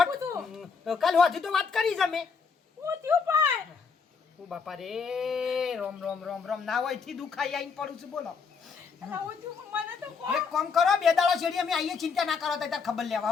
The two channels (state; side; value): quieter; right; 5.5 dB